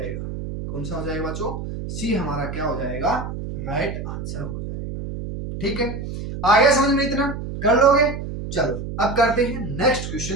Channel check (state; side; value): noise; right; hum, 7 dB below the sound